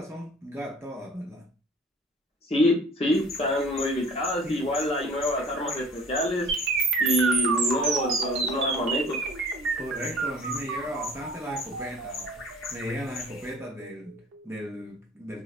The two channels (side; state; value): both; normal; correlation 0.48